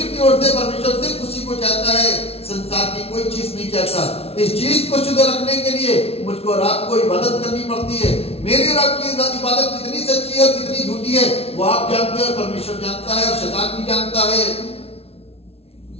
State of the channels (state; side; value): late; right; 0.29 ms